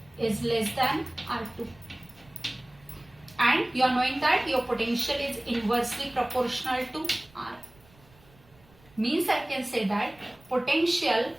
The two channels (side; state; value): right; noise; rumble, 28 dB below the sound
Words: is less than R2, and you are knowing that your potential is inversely proportional to R. Means I can say that potential